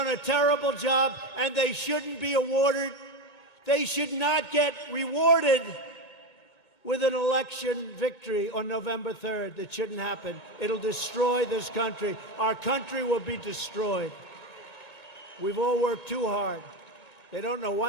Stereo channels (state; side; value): late; right; 2.2 ms